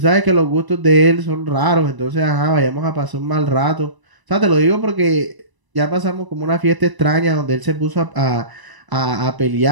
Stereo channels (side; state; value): left; late; 1.0 ms